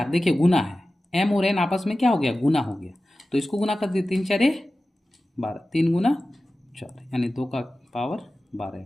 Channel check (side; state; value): both; normal; correlation 0.95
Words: देखिए गुना है, m और n आपस में क्या हो गया, गुना हो गया। तो इसको गुना कर दिए, 3 4 12, 3 गुना 4, यानी 2 का पावर 12